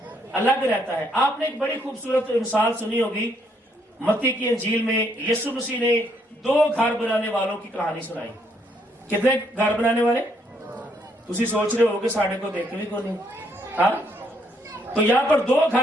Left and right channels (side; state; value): both; normal; correlation 0.71